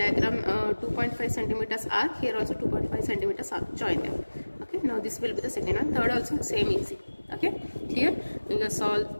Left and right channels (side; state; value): both; inverted; correlation -1.00